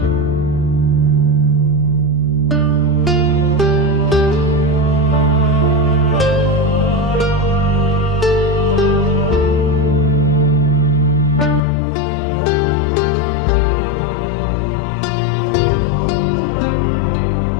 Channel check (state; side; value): drops out; right; at 11.6 s